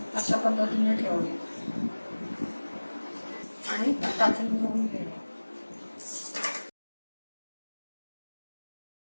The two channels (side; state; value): both; inverted; correlation -1.00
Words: अशा पद्धतीने ठेवणे आणि टाचणी लावून घेणे.